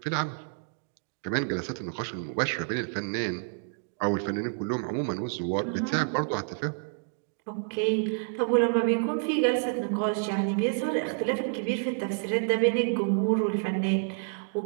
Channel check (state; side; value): silent; left; digital silence